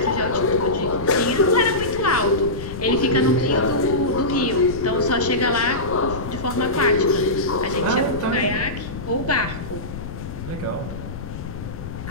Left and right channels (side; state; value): left; noise; rumble, 9 dB below the sound